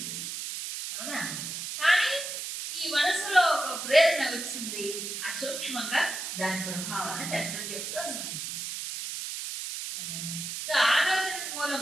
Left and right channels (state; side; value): noise; right; hiss, 5 dB below the sound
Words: అవునా? కానీ ఈ మనసులో ఒక ప్రేరణ వచ్చింది, అసూక్ష్మంగా దాని ప్రభావాన్ని శాస్త్రం చెప్తుంది. సో ఆలోచన మూలం